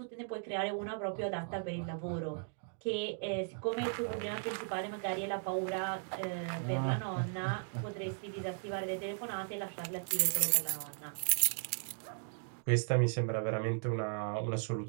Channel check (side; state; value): left; silent; 53 dB below the other